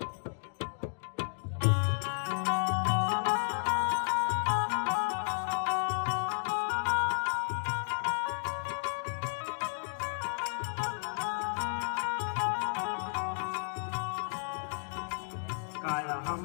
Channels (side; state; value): right; silent; digital silence